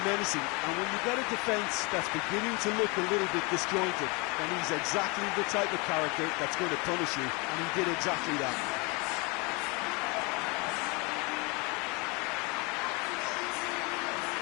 menacing, and when you get a defence that's beginning to look a little bit disjointed, then he's exactly the type of character that's going to punish you, and he did exactly that.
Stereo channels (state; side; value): quieter; right; 28.8 dB